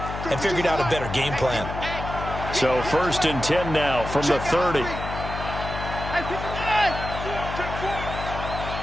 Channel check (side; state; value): left; noise; hum, 7 dB below the sound